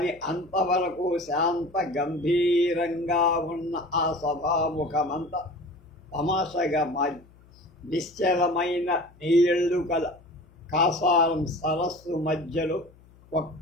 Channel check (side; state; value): left; noise; hum, 26 dB below the sound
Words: అంతవరకు శాంత గంభీరంగా ఉన్న ఆ సభాముఖమంతా తమాషగా మారి నిశ్చలమైన నీళ్లు కల కాసారం సరస్సు మధ్యలో